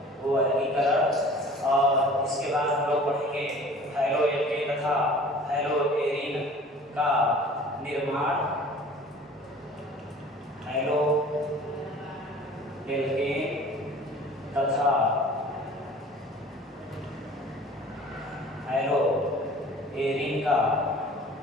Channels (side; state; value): both; normal; correlation 0.46